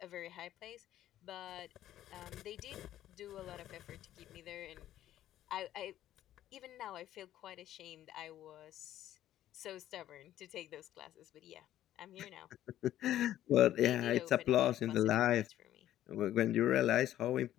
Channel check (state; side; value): quieter; right; 12.6 dB